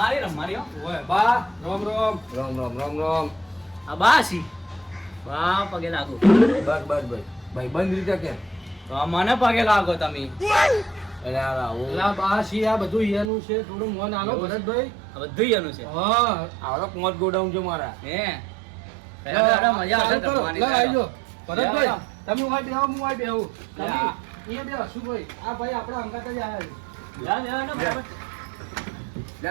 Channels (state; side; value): drops out; left; at 13.3 s